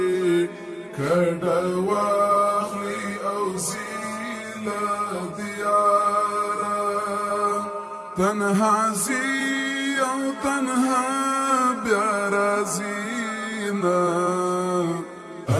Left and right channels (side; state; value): both; identical; correlation 1.00